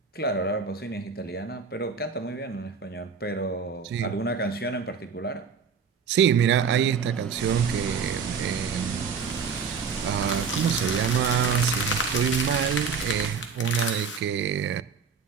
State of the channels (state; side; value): quieter; left; 5.9 dB